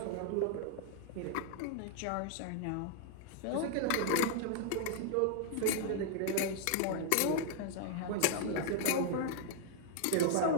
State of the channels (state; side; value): different; both; correlation 0.00